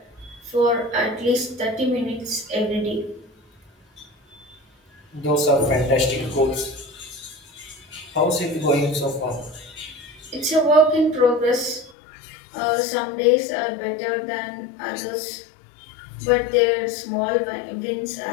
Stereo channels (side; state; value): right; drops out; at 12.0 s